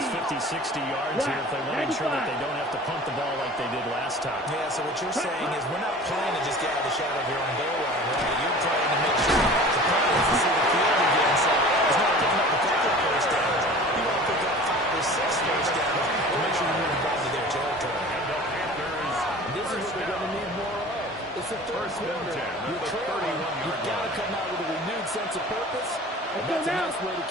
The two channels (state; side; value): normal; both; correlation 0.41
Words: 50, 60 yards here if they want to make sure that they don't have to punt the ball like they did last time. Yeah, so what you're saying is we're not playing to just get out of the shadow of your own goal line, right? You're playing to make sure the opponents to see the field again. So it's not picking up a couple of first downs. You want to pick up 5 or 6 first downs and make sure you move the ball to their territory. And the Panthers. This is what they're going to need more of. It's the third quarter. You're trailing. You've got to come out with a renewed sense of purpose. And that's a nice way to